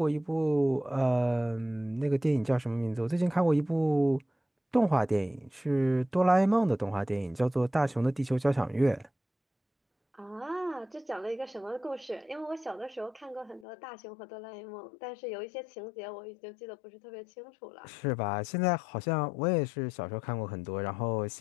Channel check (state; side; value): drops out; right; at 13.7 s